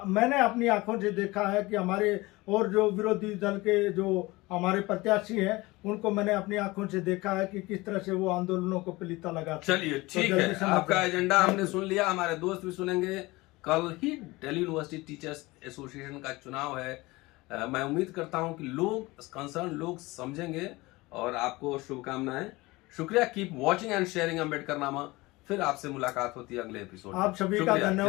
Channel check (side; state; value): right; quieter; 21.5 dB